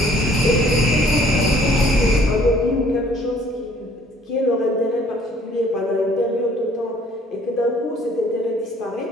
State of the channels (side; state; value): both; normal; correlation 0.58